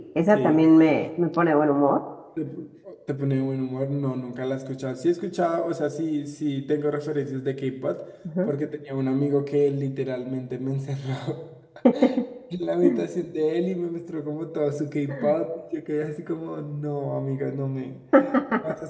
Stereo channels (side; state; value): both; identical; correlation 1.00